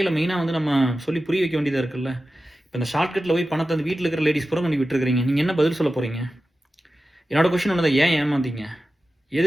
மெயினாக வந்து நம்ம சொல்லி புரிய வைக்க வேண்டியதாக இருக்குல்ல. இப்போ இந்த ஷார்ட்கட்டில் போய் பணத்தை வந்து வீட்டில் இருக்கிற லேடிஸ் பூரா கொண்டு விட்டுருக்கிறீங்க. நீங்கள் என்ன பதில் சொல்ல போகிறீங்க? என்னோட கொஷின் ஒன்று தான், ஏன் ஏமாந்தீங்க?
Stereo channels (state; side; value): normal; both; correlation 0.94